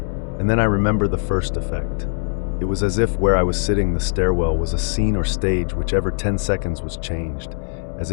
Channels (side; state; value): right; silent; digital silence